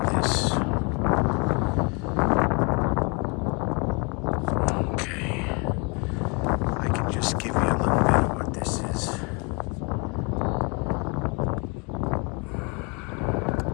this. Okay, I can just give you a little bit of what this is.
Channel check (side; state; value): right; quieter; 31.0 dB